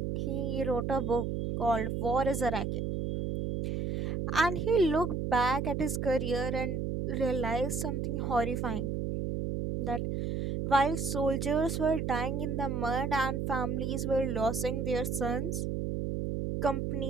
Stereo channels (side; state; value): right; noise; hum, 1 dB below the sound